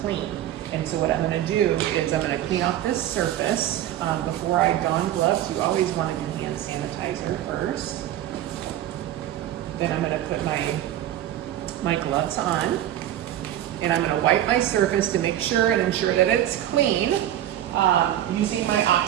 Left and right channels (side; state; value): left; quieter; 12.2 dB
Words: clean. And so what I'm going to do is I'm going to clean off this surface. Before I don gloves, you always want to do hand sanitizer first. Then I'm going to put my gloves on, and I'm going to wipe my surface to make sure and ensure that it's clean using my